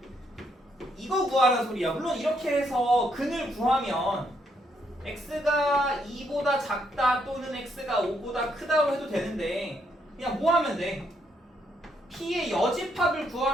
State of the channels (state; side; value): normal; both; correlation 0.74